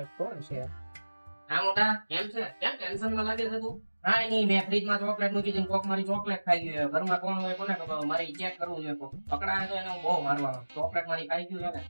કોણ છે હા મોટા કેમ છે કેમ ટેન્શન માં લાગે છે તું હા નહીં મેં ફ્રીજ માં ચોકલેટ મૂકી દીધી કોક મારી ચોકલેટ ખાઈ ગયું ઘરમાં કોણ હોય કોને ખબર મારે ચેક કરવું જોઈએ કોક પકડાય તો એને હું બહુ મારવાનો ચોકલેટ મારી ખાઈ ગયું છે ને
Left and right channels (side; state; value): both; inverted; correlation -1.00